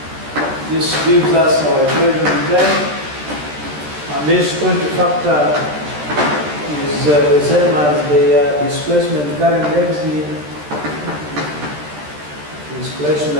This gives us our equation 10, and this quantity factor is the same as the displacement current density.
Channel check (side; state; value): left; late; 13 ms